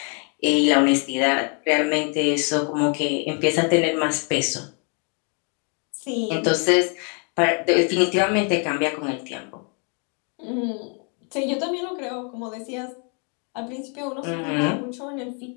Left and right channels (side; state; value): right; quieter; 38.8 dB